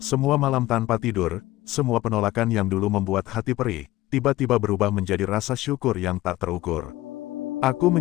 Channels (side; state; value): right; quieter; 16.9 dB